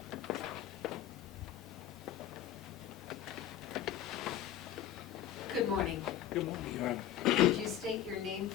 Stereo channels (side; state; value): right; quieter; 11.0 dB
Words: Good morning. Good morning, Your Honor. Could you state your name